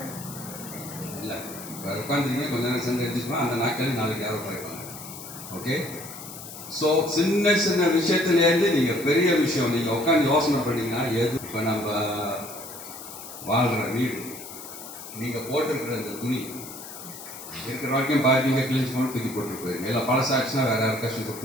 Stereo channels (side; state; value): left; noise; hiss, 13 dB below the sound